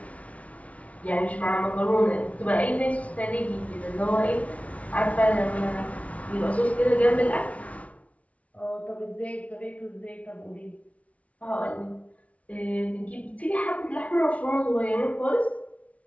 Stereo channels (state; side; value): late; right; 0.066 ms